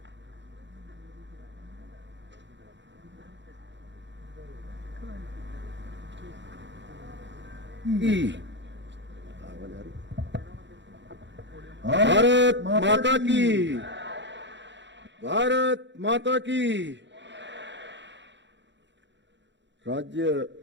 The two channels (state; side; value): late; left; 0.52 ms